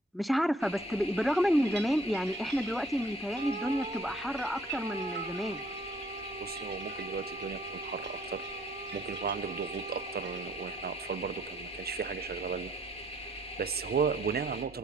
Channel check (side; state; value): both; normal; correlation 0.63